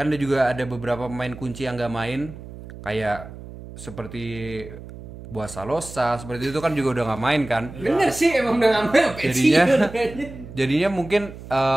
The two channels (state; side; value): noise; right; hum, 14 dB below the sound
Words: ada juga ada beberapa pemain kunci yang nggak main kayak seperti Buasa Losa seperti itu kan juga udah nggak main kan. Bener sih emang udah ngambil Jadinya mungkin